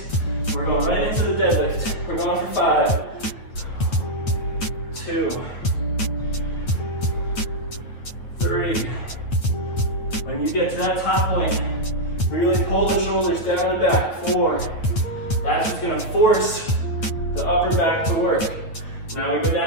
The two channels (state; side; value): late; right; 9.0 ms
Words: We're going right into the deadlift. We're going for 5, 2, 3. When you get to that top point, Really pull the shoulders down and back. 4. That's just gonna force the upper back to work. Now we go